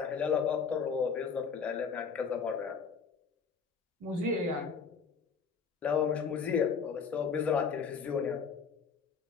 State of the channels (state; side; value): quieter; right; 5.9 dB